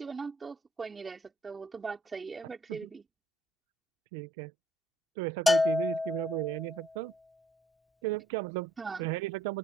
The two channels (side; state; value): both; normal; correlation 0.65